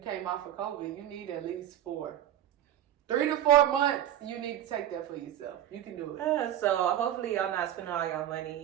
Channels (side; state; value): left; quieter; 11.6 dB